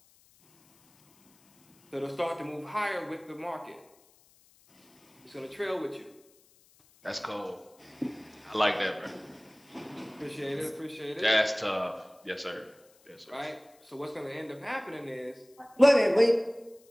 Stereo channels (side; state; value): left; noise; hiss, 30 dB below the sound